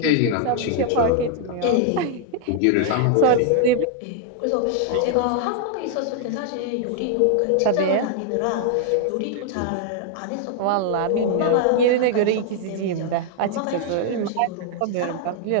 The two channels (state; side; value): different; both; correlation 0.00